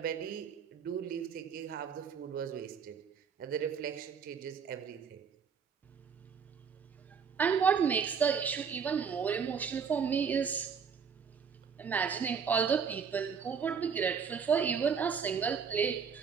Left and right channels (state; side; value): quieter; left; 6.5 dB